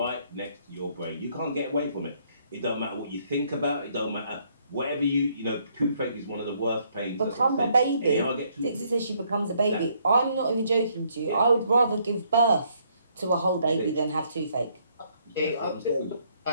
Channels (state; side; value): inverted; both; correlation -0.69